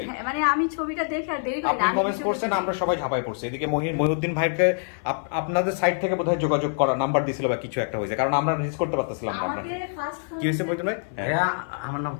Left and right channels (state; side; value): silent; right; 56 dB below the other